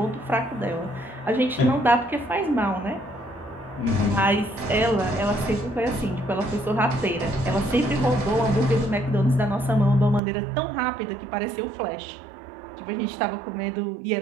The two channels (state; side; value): drops out; left; at 10.2 s